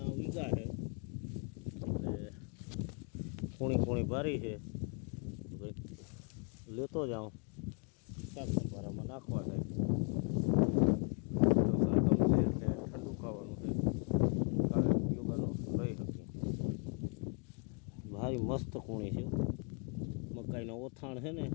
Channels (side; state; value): right; quieter; 39.6 dB